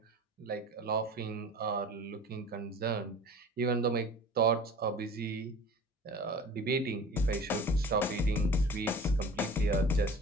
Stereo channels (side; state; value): both; normal; correlation 0.42